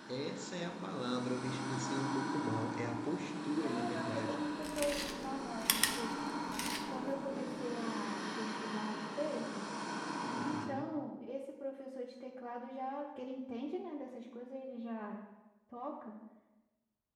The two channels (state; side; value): identical; both; correlation 1.00